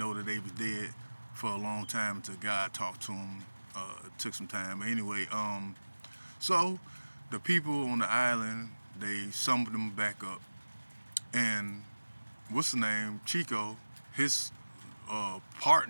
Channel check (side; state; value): both; inverted; correlation -1.00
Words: that they was dead for a long time until God talked to them. It took some time. But anyway, so the people on the island, they summoned them back up, and what's the name? Chico, his